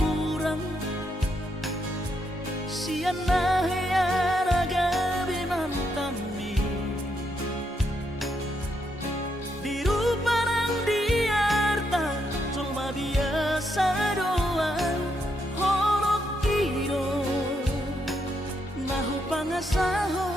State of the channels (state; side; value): normal; both; correlation 0.78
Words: siana heara gabe mantami diru parang diarta cuma biasa doang horok kiro nahu